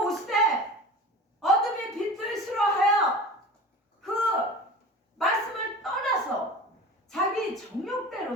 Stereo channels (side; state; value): both; normal; correlation 0.36